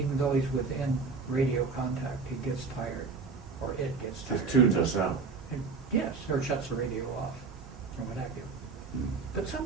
though he's within radio contact, he gets tired, or it gets tired. Just tunes us out. And yes, or shuts the radio off, or what have you. Mm. But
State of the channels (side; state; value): left; quieter; 4.6 dB